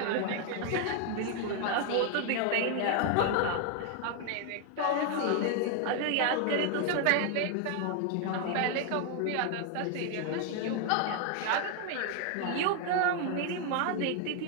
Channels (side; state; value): both; different; correlation 0.00